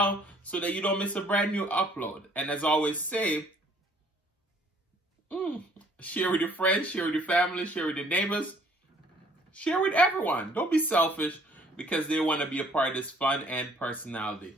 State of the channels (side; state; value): both; normal; correlation 0.60